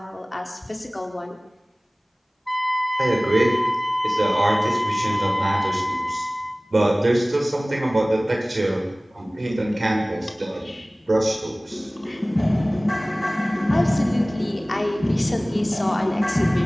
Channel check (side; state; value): both; normal; correlation 0.98